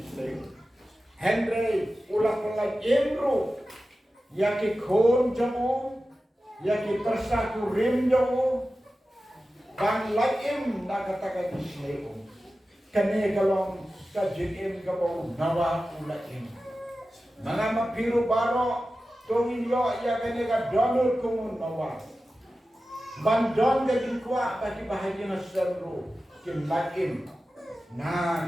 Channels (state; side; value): normal; both; correlation 0.94